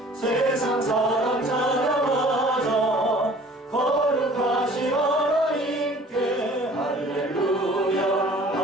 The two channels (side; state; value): both; normal; correlation 0.50